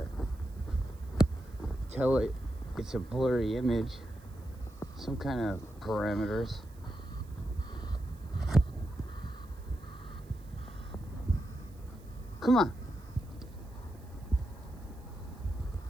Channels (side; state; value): right; noise; hiss, 28 dB below the sound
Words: tell it it's a blurry image. Some kind of parameters. Come on.